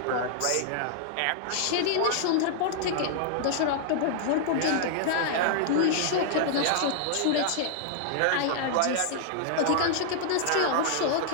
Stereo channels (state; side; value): different; both; correlation -0.01